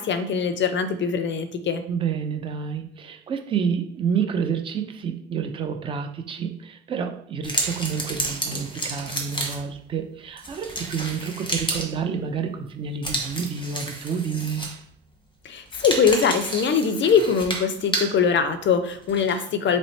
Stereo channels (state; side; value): normal; both; correlation 0.21